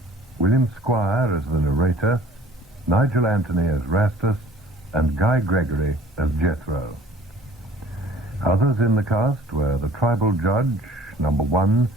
William Squire as the narrator, Nigel Anthony as Rastus, and Guy Gregory as Jethro. Others in the cast were the tribal judge, number 1,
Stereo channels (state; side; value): normal; both; correlation 0.51